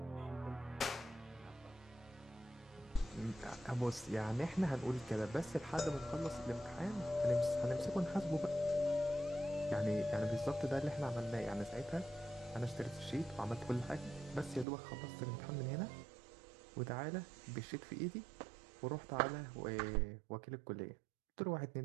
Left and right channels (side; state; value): left; drops out; at 14.7 s